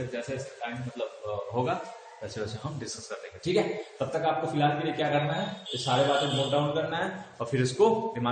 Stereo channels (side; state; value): both; identical; correlation 1.00